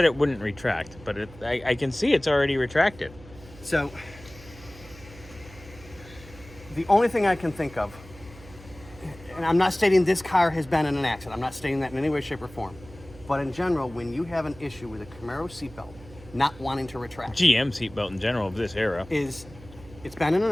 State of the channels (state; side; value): noise; right; hum, 19 dB below the sound